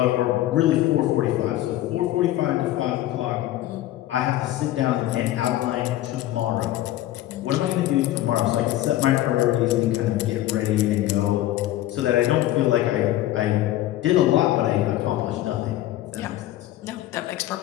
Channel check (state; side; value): quieter; right; 14.6 dB